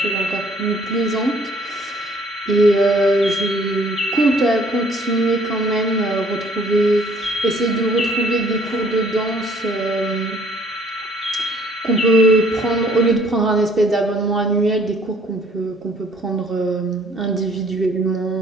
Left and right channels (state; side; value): normal; both; correlation 0.60